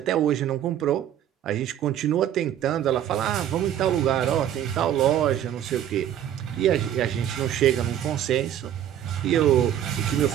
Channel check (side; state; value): left; quieter; 10.7 dB